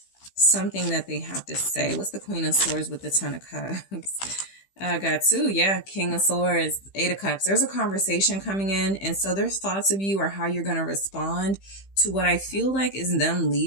Something that they have to say. What's the Queen of Swords with the Ten of Cups? I got two. Yeah. King of Swords, Eight of Cups. There's a conversation coming in. And so their thoughts of you are how you're going to respond to what I feel like is them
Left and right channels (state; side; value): late; right; 15 ms